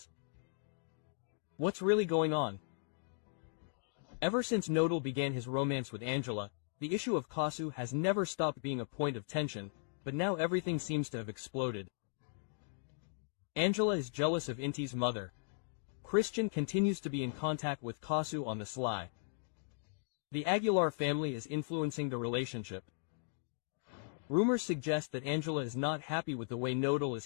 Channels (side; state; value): right; silent; digital silence